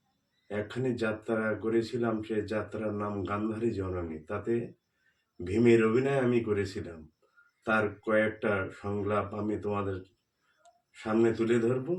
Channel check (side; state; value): both; identical; correlation 1.00